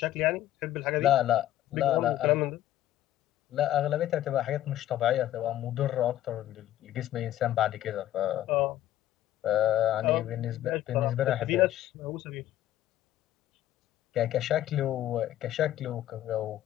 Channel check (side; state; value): right; quieter; 13.2 dB